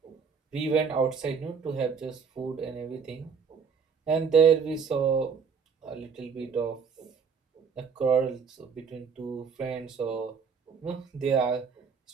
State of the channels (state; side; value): quieter; left; 6.0 dB